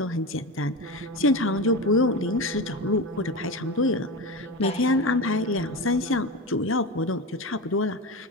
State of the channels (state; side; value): normal; both; correlation 0.23